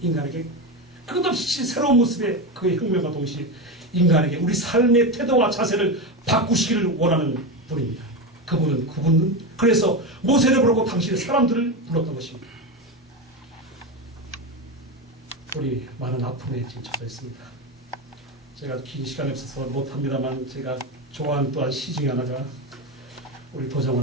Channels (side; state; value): both; normal; correlation 0.17